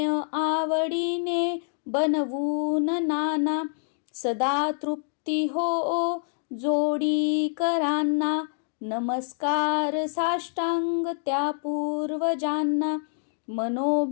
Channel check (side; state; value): right; silent; digital silence